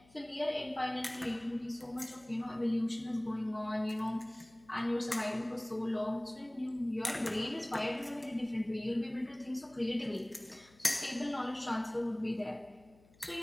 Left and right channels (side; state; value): left; noise; hum, 27 dB below the sound